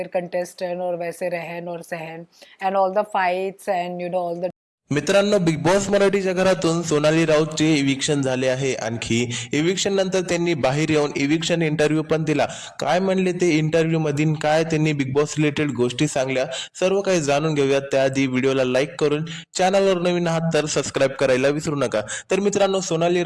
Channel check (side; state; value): both; identical; correlation 1.00